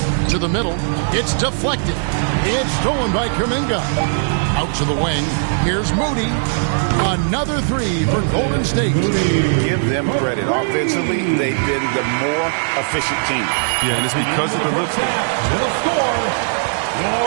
To the middle, it's deflected. It's stolen by Kuminga. Out to the wing, here's Moody. Another three for Golden State. Give them credit. Offensively, they've been the more efficient team. Yeah, and it's because of the looks. The score,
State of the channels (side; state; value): left; silent; digital silence